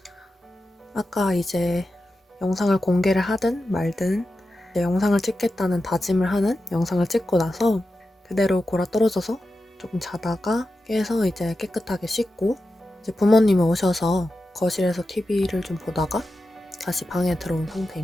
아까 이제 영상을 공개를 하든 말든 이제 영상을 찍겠다는 다짐을 하는 영상을 찍고 나서 그대로 골아 떨어져서 조금 자다가 깨서 이제 깨끗하게 씻고 이제 부모님이 오셔서 거실에서 TV를 좀 보다가 다시 방에 들어온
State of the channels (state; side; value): normal; both; correlation 0.91